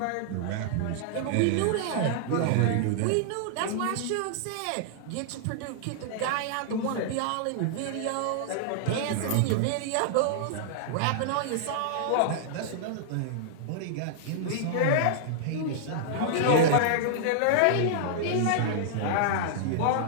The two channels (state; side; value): different; both; correlation -0.01